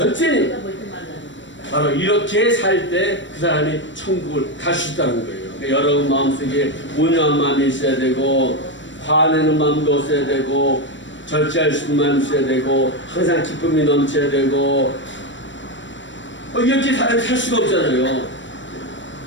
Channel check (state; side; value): late; right; 0.54 ms